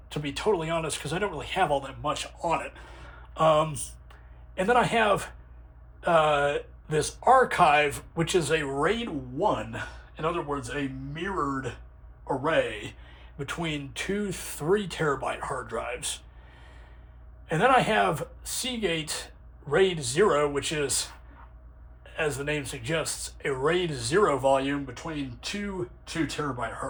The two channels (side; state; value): both; identical; correlation 1.00